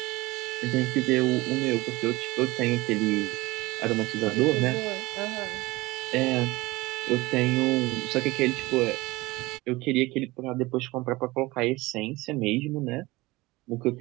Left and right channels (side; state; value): left; quieter; 20.9 dB